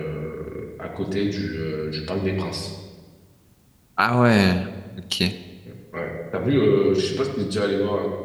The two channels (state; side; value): identical; both; correlation 1.00